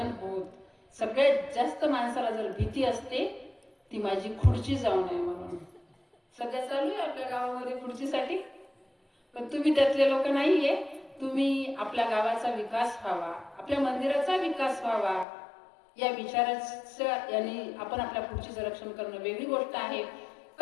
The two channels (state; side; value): drops out; right; at 15.2 s